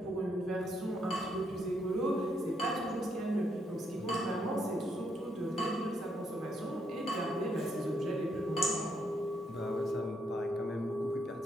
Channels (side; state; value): both; normal; correlation 0.76